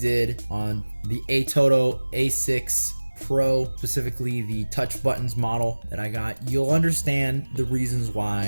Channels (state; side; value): inverted; both; correlation -1.00